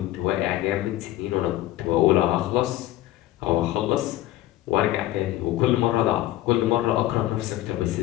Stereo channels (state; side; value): quieter; right; 15.1 dB